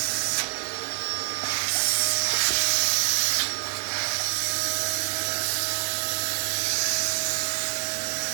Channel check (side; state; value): left; silent; 61 dB below the other